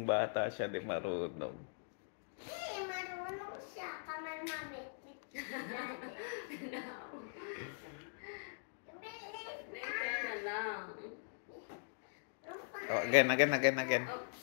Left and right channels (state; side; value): silent; right; digital silence